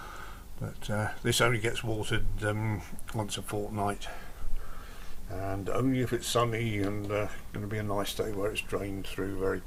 But this only gets watered once a fortnight, and only if it's sunny and going to be a nice day where it's drained through very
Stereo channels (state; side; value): identical; both; correlation 1.00